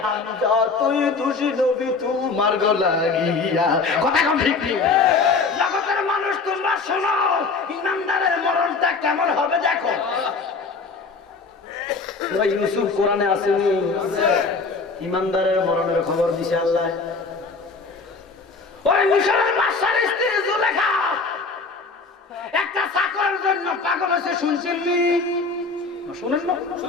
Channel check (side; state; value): right; quieter; 4.3 dB